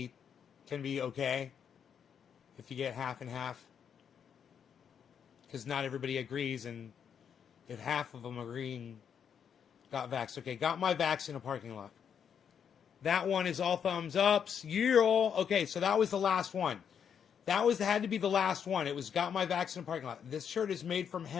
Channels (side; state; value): right; quieter; 7.8 dB